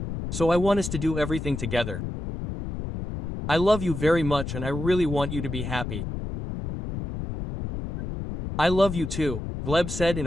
So I want us to do everything together. I love you very much and I really want you to be happy. I love you too, Gleb said in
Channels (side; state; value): left; noise; rumble, 6 dB below the sound